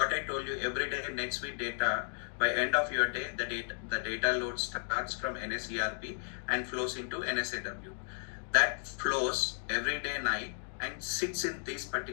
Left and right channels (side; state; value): right; silent; digital silence